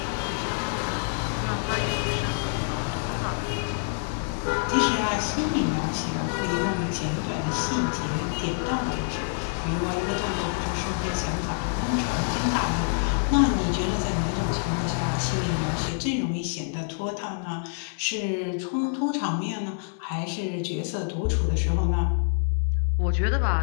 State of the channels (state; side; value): silent; right; 57 dB below the other